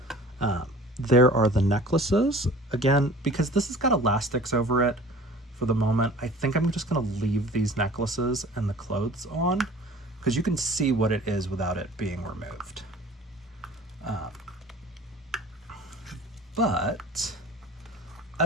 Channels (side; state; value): both; normal; correlation 0.45